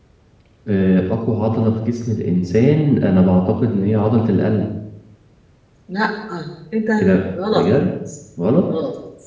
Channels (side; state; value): both; identical; correlation 1.00